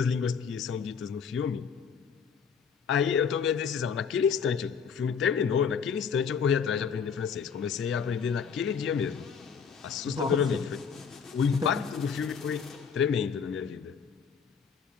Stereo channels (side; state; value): right; quieter; 6.6 dB